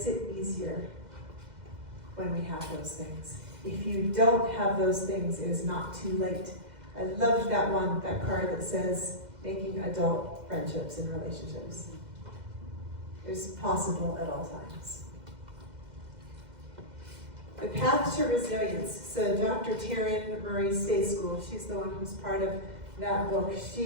it easier when we have those things. If you don't have those things, it is not too late. I loved that card that says, making adult friendships and relationships. It's possible at all times. The path to resilience. So Dr. Taryn Marie Stay School, she's the one who's part of that book.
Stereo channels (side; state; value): left; late; 2.0 ms